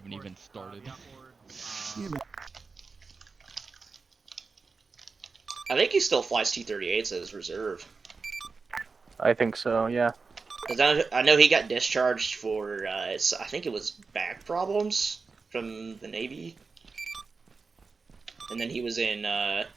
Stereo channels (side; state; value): left; quieter; 4.5 dB